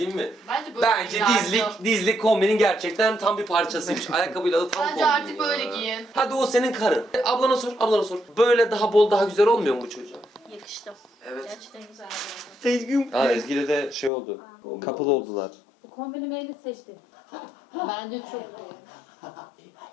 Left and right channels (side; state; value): right; drops out; at 14.1 s